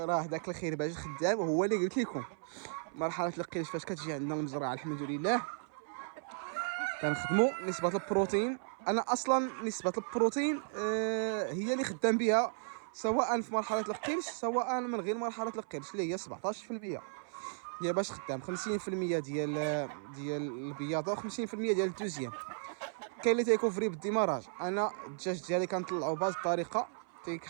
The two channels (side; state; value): left; silent; 54 dB below the other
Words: داك الخير باش خدام هو اللي قلت لكم. مرحله القيش فاش كتجي عندنا المزرعه الحمد لله كنخدموا نسبه البروتين. انا اصلا نسبه البروتين هي اللي خدام بها سواء في مرحله القرش سواء من غير مرحله القرش اللي هي 17%. هي باش خدام 50% ديال البياضه و50% ديال الدوزيام. كاين اللي تيكوفري بالديماراج. انا الدجاج ديالي كنطلعو بهذه الطريقه